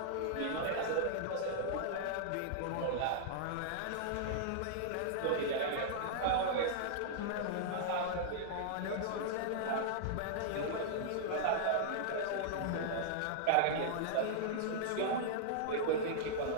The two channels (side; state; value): both; different; correlation -0.01